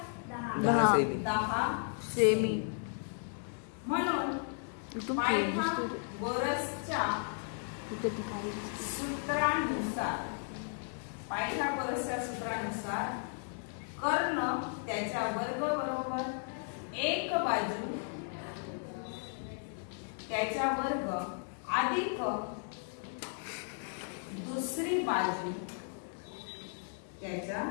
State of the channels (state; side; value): silent; right; 54 dB below the other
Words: 10 सेमी. म्हणून पायथागोरसच्या सूत्रानुसार कर्ण त्याच्या वर्ग बरोबर एक बाजू त्याच्या वर्ग अधिक दुसरी बाजू त्याच्या